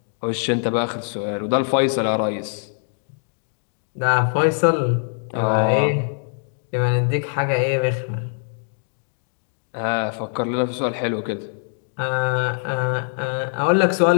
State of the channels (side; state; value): right; silent; digital silence